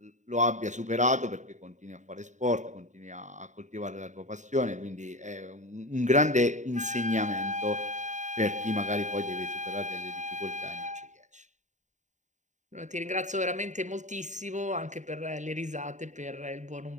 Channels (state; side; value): late; left; 0.35 ms